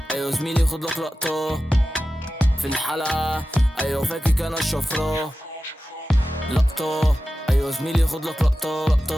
أيوة زميلي خد لك لقطة. في الحلقة أيوة فاكك أنا الشفرة. لقطة. أيوة زميلي خد لك لقطة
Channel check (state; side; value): normal; both; correlation 0.94